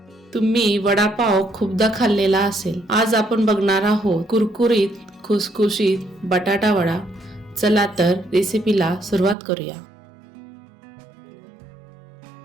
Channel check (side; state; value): left; drops out; at 9.3 s